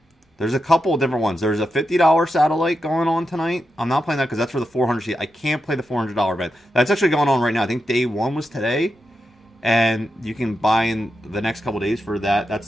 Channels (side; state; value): both; normal; correlation 0.87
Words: There's a couple of different ones. There's a $50 satellite going on tonight. I'm not playing that because that's for the 400 seat. I can't play the $400 event. That's actually going on right now. I think day one was today. And you can buy in the next couple days for that. That's